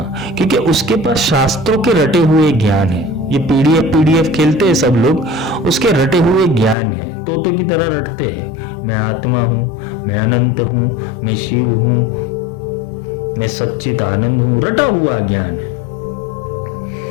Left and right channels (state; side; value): drops out; right; at 6.8 s